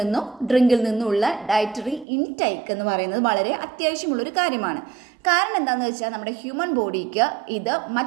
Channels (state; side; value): drops out; left; at 2.1 s